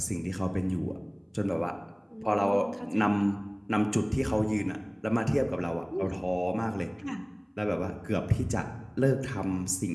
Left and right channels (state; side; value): identical; both; correlation 1.00